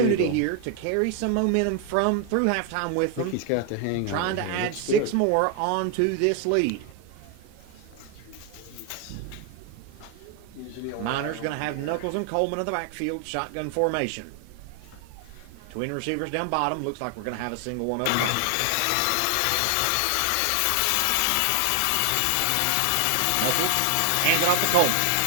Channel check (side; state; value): both; different; correlation 0.00